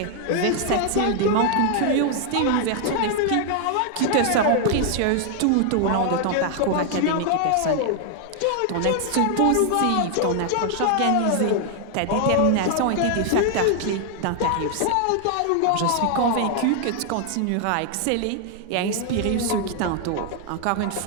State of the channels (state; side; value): different; both; correlation 0.00